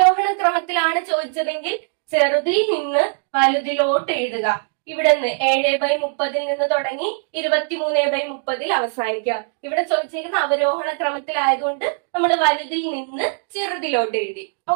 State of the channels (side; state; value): left; silent; digital silence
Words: ക്രമത്തിലാണ് ചോദിച്ചതെങ്കിൽ ചെറുതിൽ നിന്ന് വലുതിലോട്ട് എഴുതുക. ഇവിടെ നിന്ന് 7/30 നിന്ന് തുടങ്ങി 23/30 അവസാനിക്കുക. ഇവിടെ ചോദിച്ചേക്കുന്ന അവരോഹണ ക്രമത്തിലായതുകൊണ്ട് നമ്മൾ വലുതിൽ നിന്ന് ചെറുതിലോട്ട് എഴുതി.